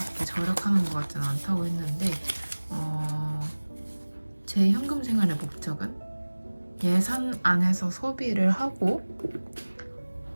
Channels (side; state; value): both; inverted; correlation -1.00